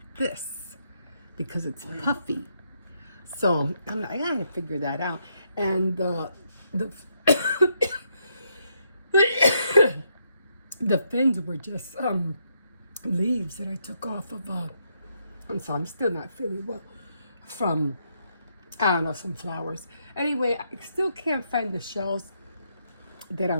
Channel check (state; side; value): inverted; both; correlation -0.77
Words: this? Because it's puffy. So I gotta figure that out. And the the fins were just leaves that I took off of and so I'm still not feeling well from, I don't know, some flowers. Anyway, I still can't find the shells that